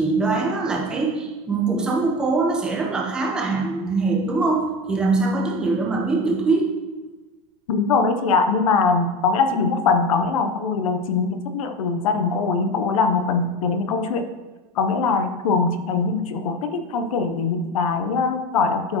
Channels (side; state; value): both; normal; correlation 0.28